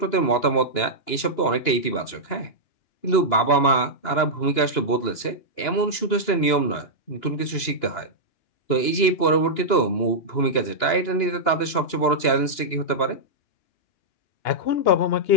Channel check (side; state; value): right; late; 2.9 ms